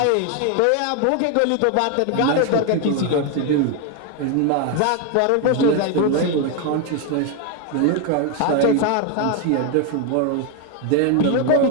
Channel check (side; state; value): both; different; correlation 0.01